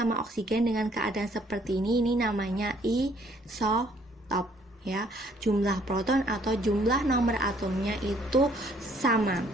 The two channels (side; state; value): both; normal; correlation 0.63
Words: oksigen dengan keadaan seperti ini namanya isotop. Ya, jumlah proton atau jumlah nomor atomnya itu sama.